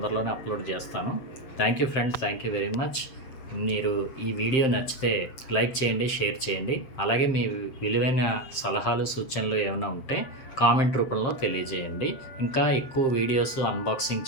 అప్లోడ్ చేస్తాను. Thank you friends, thank you very much. మీరు ఈ వీడియో నచ్చితే లైక్ చేయండి, షేర్ చేయండి. అలాగే మీ విలువైన సలహాలు, సూచనలు ఏమైనా ఉంటే కామెంట్ రూపంలో తెలియజేయండి. ఇంకా ఎక్కువ వీడియోస్ అన్బాక్సింగ్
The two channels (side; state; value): right; late; 7.6 ms